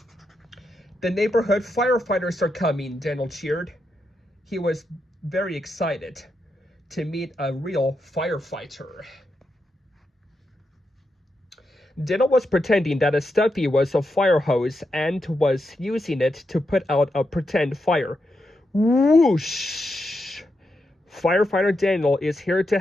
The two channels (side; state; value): both; normal; correlation 0.85